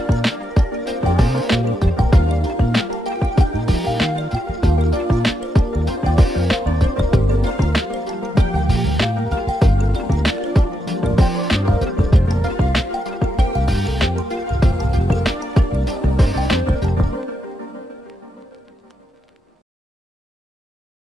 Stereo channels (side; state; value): both; normal; correlation 0.83